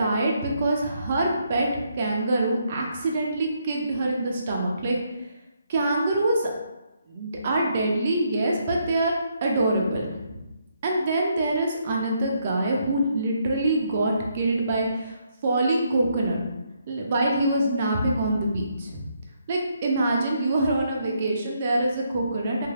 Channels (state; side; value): inverted; both; correlation -0.74